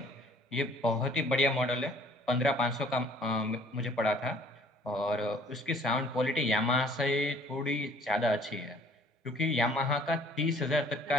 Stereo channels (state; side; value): normal; both; correlation 0.56